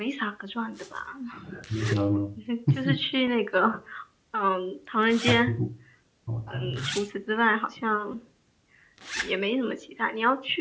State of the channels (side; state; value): both; identical; correlation 1.00